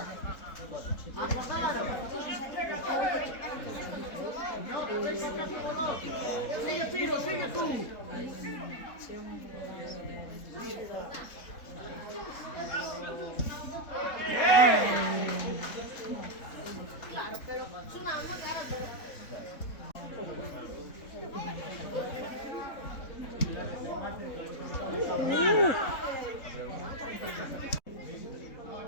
Sigue Pino, sigue tú. Claro, pero sonando cara de...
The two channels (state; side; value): late; right; 3.7 ms